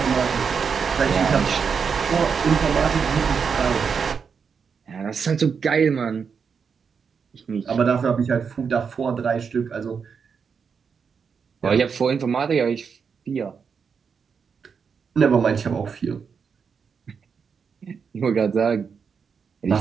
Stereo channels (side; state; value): left; quieter; 6.1 dB